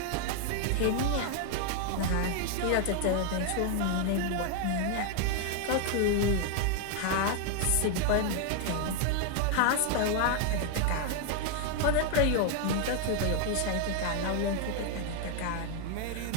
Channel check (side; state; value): both; different; correlation 0.00